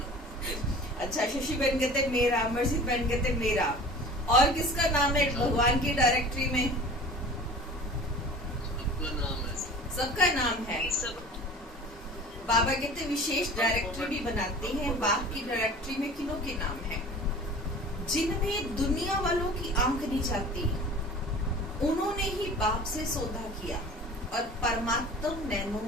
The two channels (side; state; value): both; normal; correlation 0.41